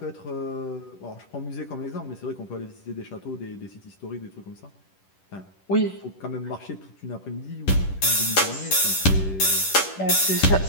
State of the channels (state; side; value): late; right; 10 ms